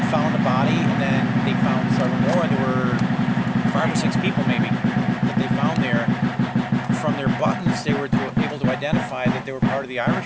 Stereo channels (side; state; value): both; identical; correlation 1.00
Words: found a body, and then they found several more. There were 5 or 6 people maybe that they found there. From their buttons, they were able to identify that they were part of the